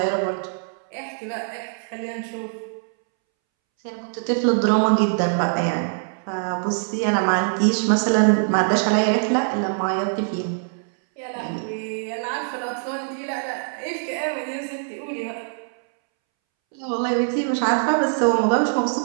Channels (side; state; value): left; silent; 63 dB below the other